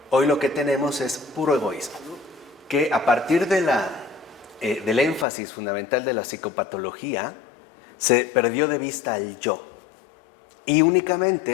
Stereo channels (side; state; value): right; drops out; at 5.2 s